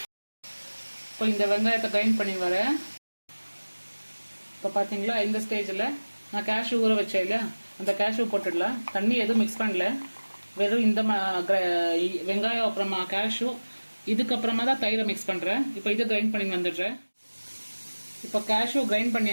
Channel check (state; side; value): inverted; both; correlation -1.00